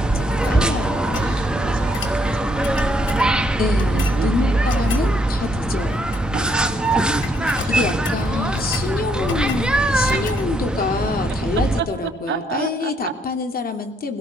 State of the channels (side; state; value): both; normal; correlation 0.72